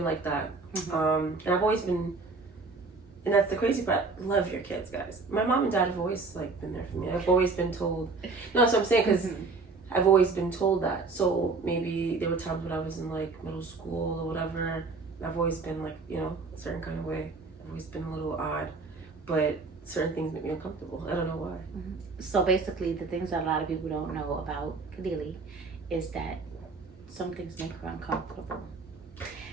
like that. And I've always been, and that's the crazy part, love your kids, guys. My mom and dad have always like been there for me. I've always been told, no, that's what I'm saying, because I've always been told that. So maybe there were times when I was in like middle school or whatever, and I've always been like, you know, a certain kind of way. I've always been a little odd, but certain things make me uncomfortable. I don't know why. So basically, the things that a lot of people don't know about Kadeli is that some things make her uncomfortable.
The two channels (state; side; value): quieter; left; 4.0 dB